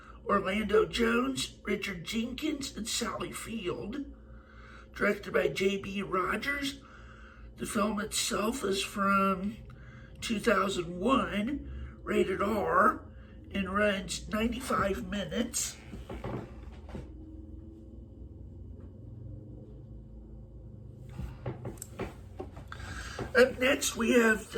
Orlando Jones, Richard Jenkins, and Sally Field. Directed by J.B. Rogers. The film itself is from 2001, rated R, and runs 95 minutes. Up next is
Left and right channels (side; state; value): both; identical; correlation 1.00